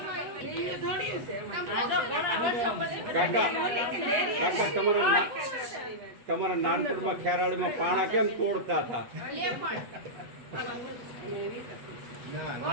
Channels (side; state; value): left; late; 7.4 ms